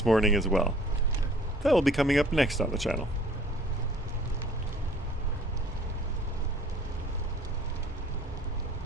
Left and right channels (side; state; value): both; normal; correlation 0.54